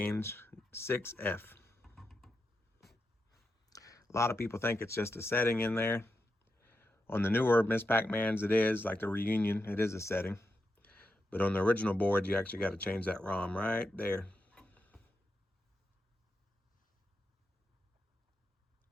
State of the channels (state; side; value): normal; both; correlation 0.87